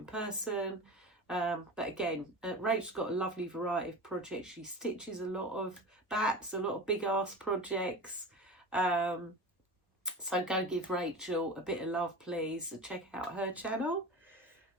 person. But again, Rachel's got a lovely variety of projects. She stitches a lot of BAPs, a lot of big ass projects. So go give Rachel a bit of love, please. Check out her channel.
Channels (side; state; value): both; normal; correlation 0.30